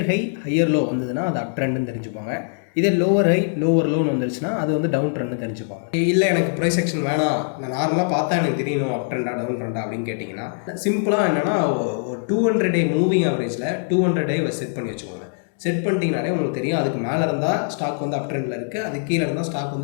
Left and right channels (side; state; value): right; silent; digital silence